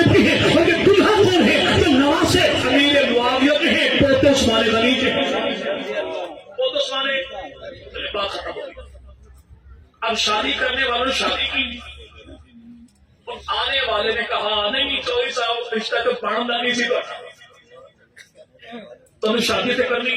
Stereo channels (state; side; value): identical; both; correlation 1.00